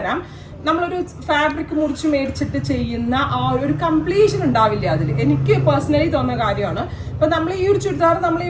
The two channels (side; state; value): both; identical; correlation 1.00